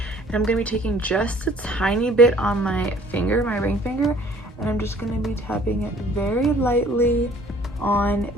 and I'm gonna be taking just a tiny bit on my finger, my ring finger, and I'm just gonna be tapping it very lightly on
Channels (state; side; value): normal; both; correlation 0.55